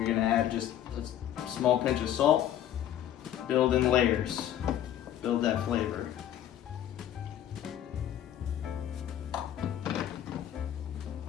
gonna add just a small pinch of salt. Build in layers, build that flavor.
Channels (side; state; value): right; quieter; 11.1 dB